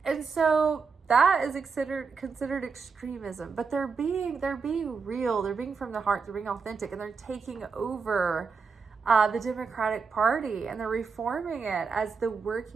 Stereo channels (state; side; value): quieter; left; 5.2 dB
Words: And so that is considered extremism, but they're being real. They're being from the heart. They're being authentic, and they're taking over the Democratic Party, and they're reforming it as the